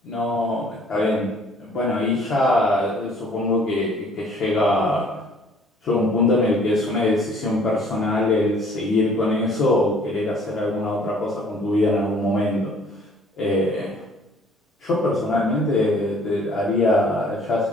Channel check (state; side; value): normal; both; correlation 0.57